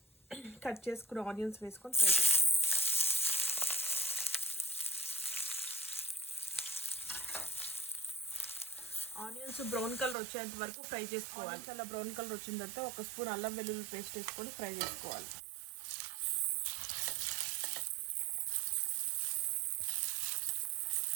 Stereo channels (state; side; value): drops out; left; at 10.2 s